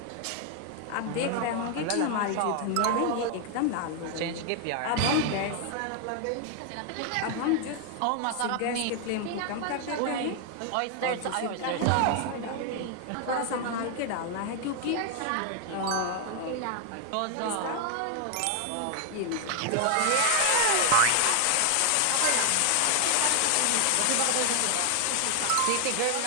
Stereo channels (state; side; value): different; both; correlation 0.00